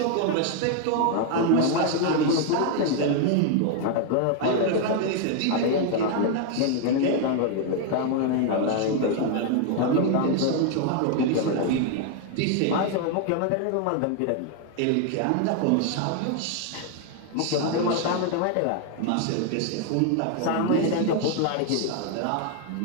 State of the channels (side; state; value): both; different; correlation 0.00